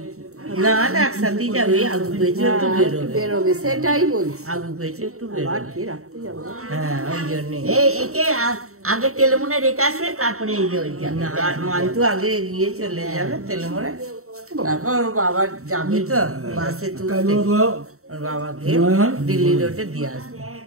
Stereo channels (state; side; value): late; left; 0.64 ms